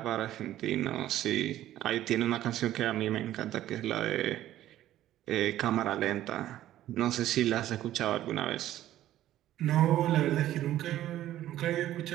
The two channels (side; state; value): left; quieter; 13.3 dB